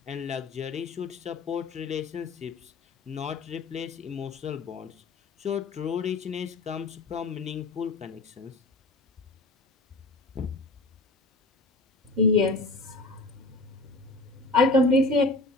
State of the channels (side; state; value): right; quieter; 3.0 dB